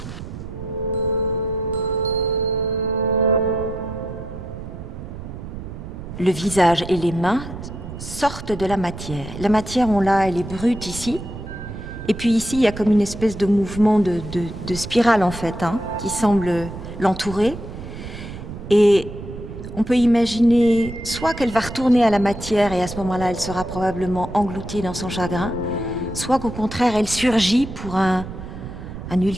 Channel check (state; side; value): noise; right; rumble, 10 dB below the sound